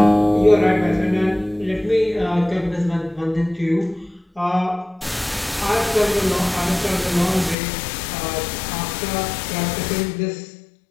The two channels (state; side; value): drops out; right; at 7.6 s